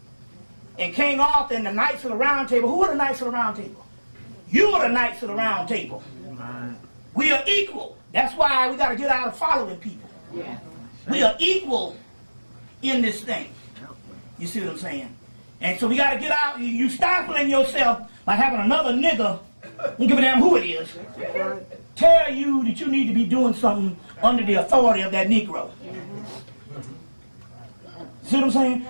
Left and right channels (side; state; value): both; inverted; correlation -1.00